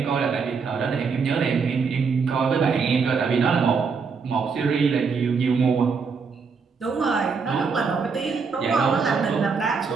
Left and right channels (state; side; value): quieter; left; 5.3 dB